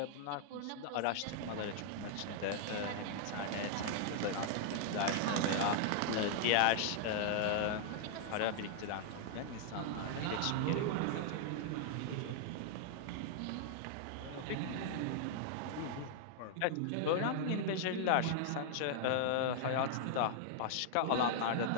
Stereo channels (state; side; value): different; both; correlation -0.01